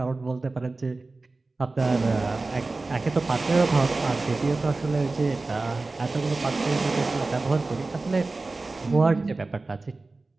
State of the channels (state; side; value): quieter; left; 3.4 dB